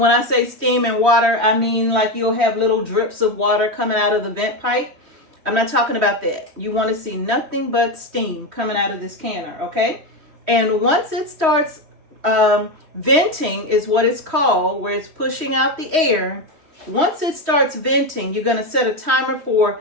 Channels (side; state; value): left; late; 3.1 ms